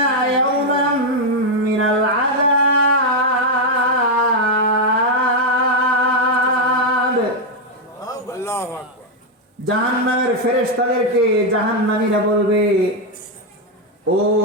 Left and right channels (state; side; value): normal; both; correlation 0.02